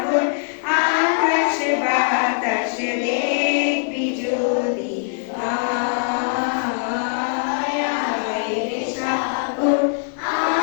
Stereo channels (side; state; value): right; silent; 65 dB below the other